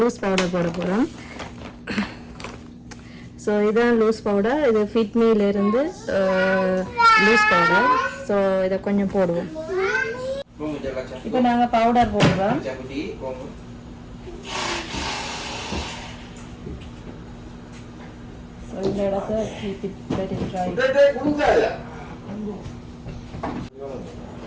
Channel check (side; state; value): both; identical; correlation 1.00